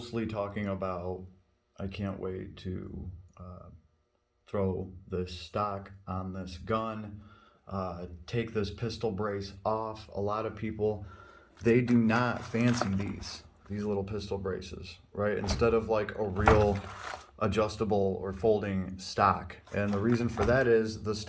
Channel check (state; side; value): identical; both; correlation 1.00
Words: talking about, I can't wait to throw this stock on this gun, take this pistol brace off. A lot of people, they do not fancy these little pistol braces, right? Instead of like a real adjustable or folding stock. And the reason for that is the